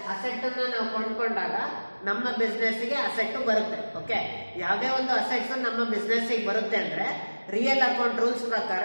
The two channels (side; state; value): both; inverted; correlation -1.00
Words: asset ಅನ್ನು ನಾವು ಕೊಂಡ್ಕೊಂಡಾಗ ನಮ್ಮ business ಗೆ asset ಬರುತ್ತೆ okay ಯಾವುದೇ ಒಂದು assets ನಮ್ಮ business ಗೆ ಬರುತ್ತೆ ಅಂದ್ರೆ ರಿಯಲ್ ಅಕೌಂಟ್ ರೂಲ್ಸ್ ಪ್ರಕಾರ